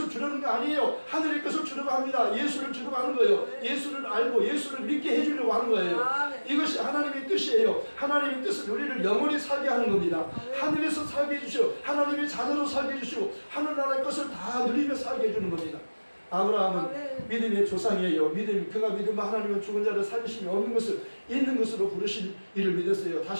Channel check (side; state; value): both; inverted; correlation -1.00